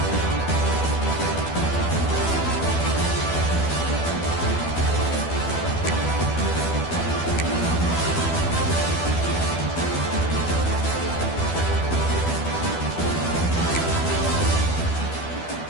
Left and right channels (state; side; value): late; right; 12 ms